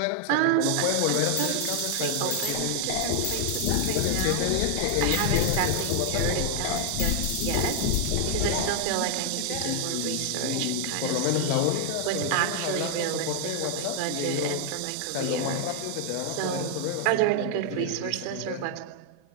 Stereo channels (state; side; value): different; both; correlation 0.00